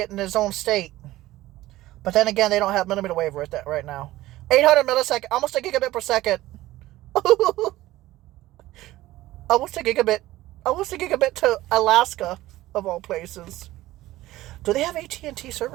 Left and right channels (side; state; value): left; quieter; 16.5 dB